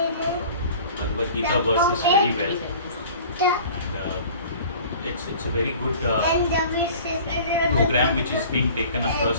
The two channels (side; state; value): both; inverted; correlation -0.45